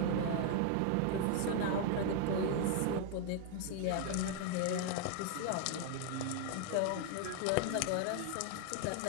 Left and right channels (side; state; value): both; different; correlation 0.00